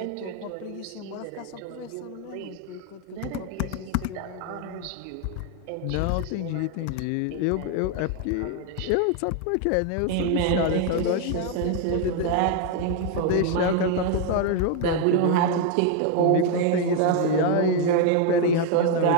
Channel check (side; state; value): both; different; correlation 0.01